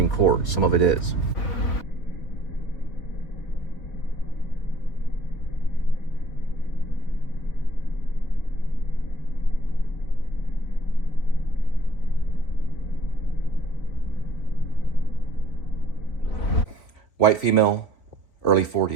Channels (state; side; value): late; right; 3.8 ms